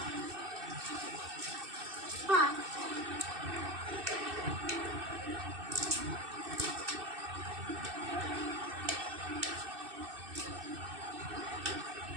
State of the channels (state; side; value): late; left; 2.6 ms